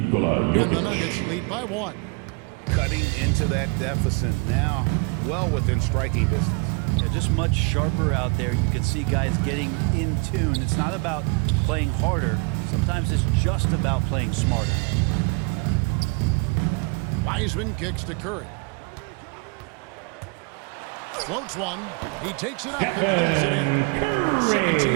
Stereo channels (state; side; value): quieter; left; 31.4 dB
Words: Jokic. And the Nuggets lead by 1. Cutting into that deficit now, well within striking distance. Yeah, just much sharper out there. You can see guys getting in tune. It's not about playing harder. Sometimes it's just about playing smarter. Wiseman kicks to Curry. Floats one. He takes it up and lays it in.